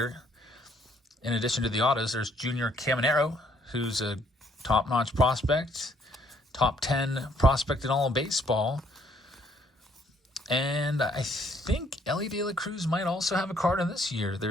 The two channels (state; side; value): normal; both; correlation 0.66